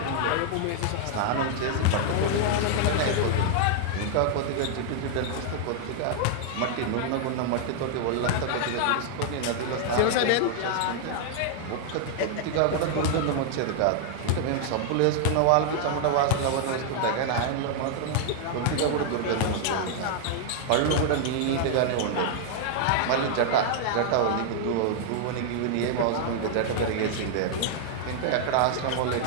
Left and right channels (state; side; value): different; both; correlation 0.00